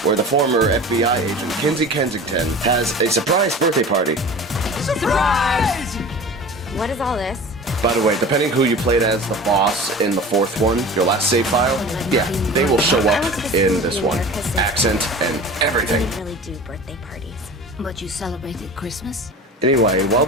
where the former FBI agent, Kinsey Kensington, has a surprise birthday party. Surprise! What is all this? By the way, depending who you played as the boss in the fourth one, your last save file, yeah, they will show up in this one. Accent and everything. We really do birthday parties. But you celebrated Christmas? Anyway, while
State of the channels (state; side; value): normal; both; correlation 0.37